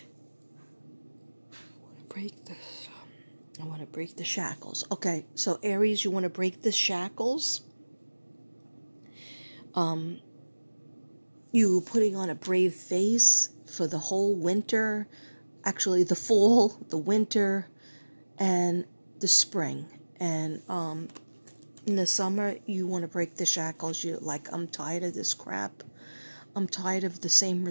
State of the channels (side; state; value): both; inverted; correlation -1.00